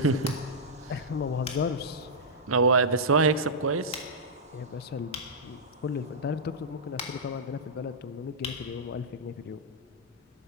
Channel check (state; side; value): normal; both; correlation -0.11